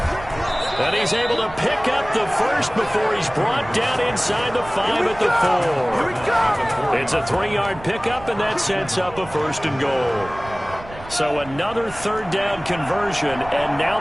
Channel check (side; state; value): right; noise; rumble, 17 dB below the sound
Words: And he's able to pick up the first before he's brought down inside the 5 at the 4. It's a 3-yard pickup, and that sets up a 1st and goal. So another 3rd down conversion, and now